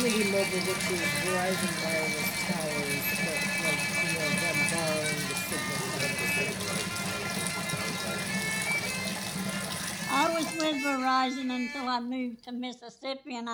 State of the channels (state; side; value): identical; both; correlation 1.00